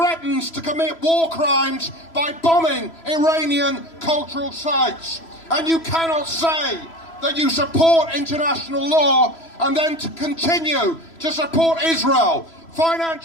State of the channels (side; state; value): right; late; 3.0 ms